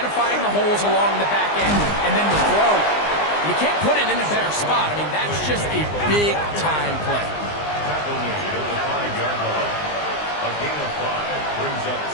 the holes along the back end, and then the throw. You can't put it in a better spot. I mean, that's just a big-time play. Tackle made at the 5-yard line. A gain of 5 brings up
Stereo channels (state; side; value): late; right; 20 ms